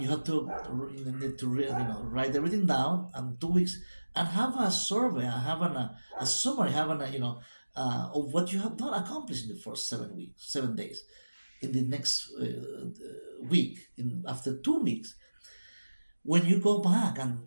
have to need to write everything down and 2 weeks and have a survey, have a summary, have of what you have done accomplished in the first 7 weeks, 7 days. In the next week, after 2 weeks, when you go back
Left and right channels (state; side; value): inverted; both; correlation -1.00